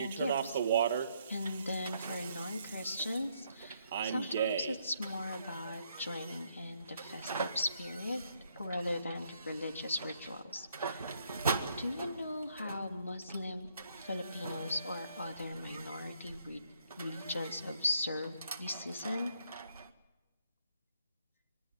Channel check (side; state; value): both; inverted; correlation -0.72